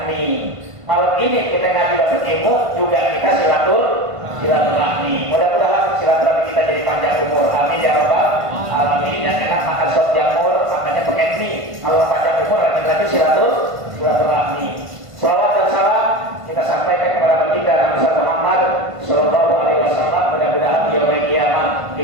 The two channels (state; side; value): late; left; 1.5 ms